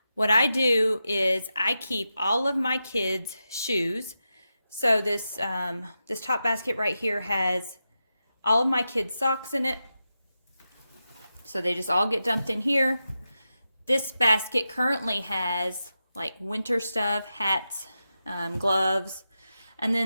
What I do is I keep all of my kids' shoes. So this top basket right here has all of my kids' socks in it. So they just all get dumped in here. This basket currently has like winter stuff, hats, gloves. And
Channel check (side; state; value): both; inverted; correlation -0.90